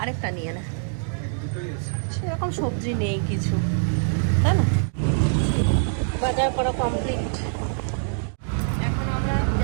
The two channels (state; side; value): silent; left; digital silence